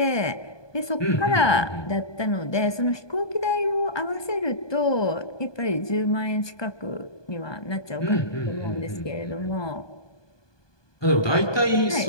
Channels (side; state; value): right; late; 1.2 ms